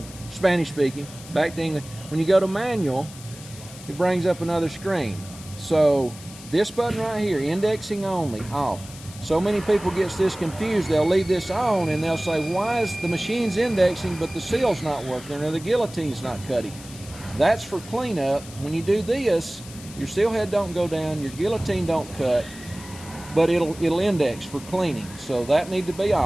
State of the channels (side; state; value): left; noise; hiss, 17 dB below the sound